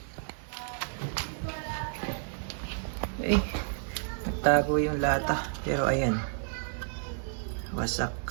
Okay, nagtago yung lata. Pero ayan, wasak.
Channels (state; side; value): silent; left; 57 dB below the other